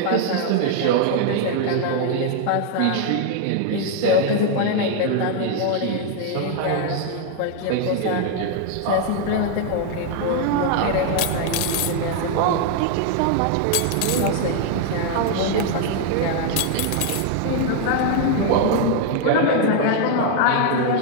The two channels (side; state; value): both; different; correlation 0.00